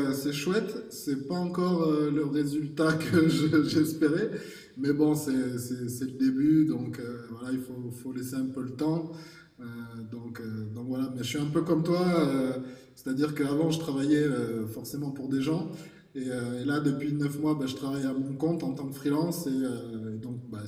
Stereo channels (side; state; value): both; identical; correlation 1.00